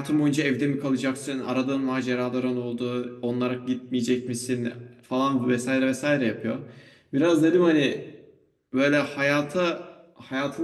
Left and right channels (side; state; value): both; identical; correlation 1.00